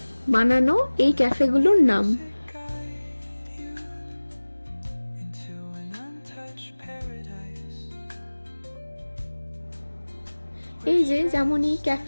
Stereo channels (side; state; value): both; inverted; correlation -1.00